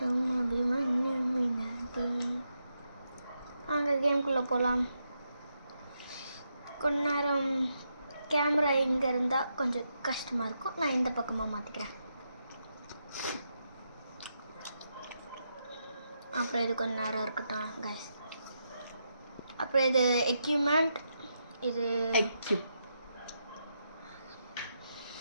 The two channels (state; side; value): inverted; both; correlation -0.83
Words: அபிமன்யு மினாதி. அங்கே கேம்குள்ளே போகலாம். கொஞ்ச நேரம் கேமரா இங்கே இருந்தால் கொஞ்சம் கஷ்டமாக இருக்கும். நான் இந்த பக்கமாக மாற்றிக்கிறேன். அப்புறம் இது கொஞ்ச நேரம் இருக்கட்டும் கைஸ். அப்புறம் இது எக்யூப்மெண்ட், இது